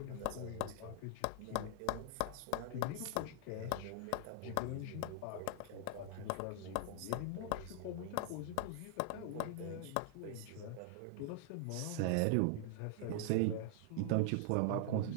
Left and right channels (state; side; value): different; both; correlation 0.00